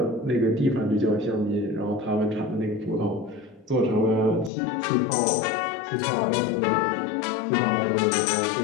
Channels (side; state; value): right; drops out; at 4.5 s